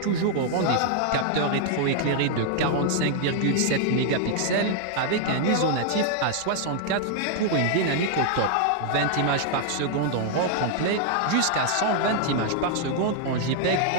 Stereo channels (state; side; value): different; both; correlation -0.01